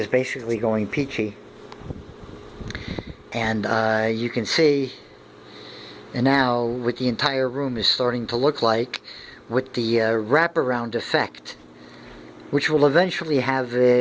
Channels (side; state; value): both; identical; correlation 1.00